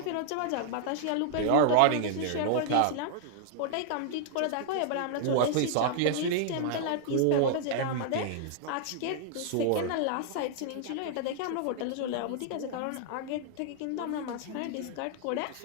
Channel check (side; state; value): both; different; correlation -0.01